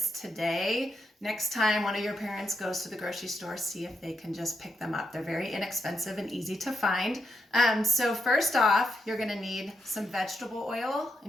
today, next time one of your parents goes to the grocery store, see if they can just pick them up. They're very inexpensive and easy to find. So first off, you're gonna need some vegetable oil.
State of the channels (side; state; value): both; normal; correlation 0.82